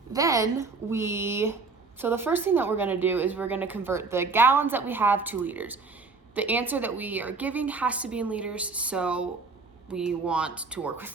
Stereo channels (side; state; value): left; quieter; 4.3 dB